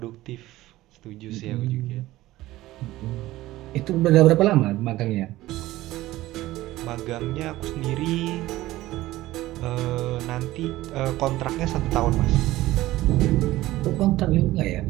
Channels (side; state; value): left; quieter; 16.7 dB